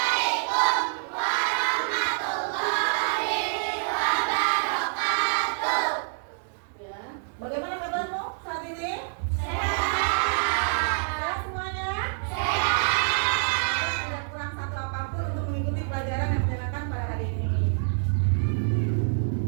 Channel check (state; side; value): silent; left; 60 dB below the other